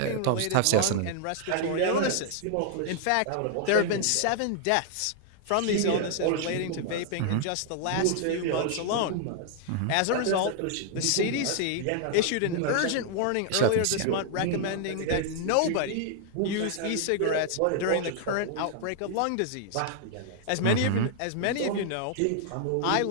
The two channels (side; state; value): both; different; correlation 0.00